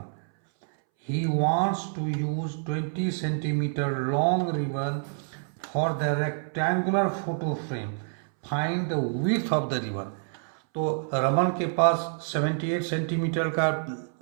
He wants to use 20 centimeter long ribbon for the rectangular photo frame. Find the width of the ribbon. तो रमन के पास 78 सेंटीमीटर का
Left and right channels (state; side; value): silent; left; 60 dB below the other